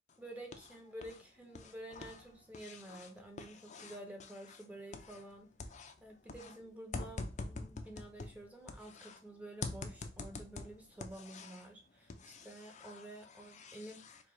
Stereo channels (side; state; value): both; normal; correlation 0.64